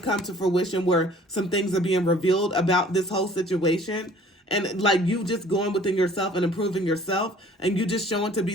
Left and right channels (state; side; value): normal; both; correlation 0.53